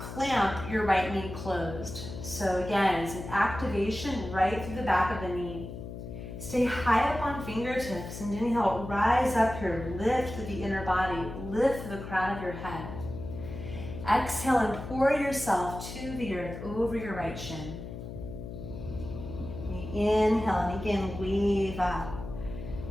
your right knee closed. So again, it's an activation right through the back of the knee. Stay high up on fingertips and inhale, rise up here, lift through the inner body, lift through the crown of your head. Exhale and pour yourself to the earth over your right shin. Inhale and again, wave up,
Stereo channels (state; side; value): noise; left; hum, 10 dB below the sound